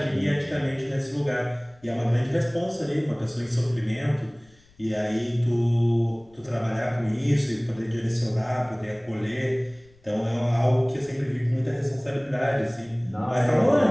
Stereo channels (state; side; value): noise; left; rumble, 30 dB below the sound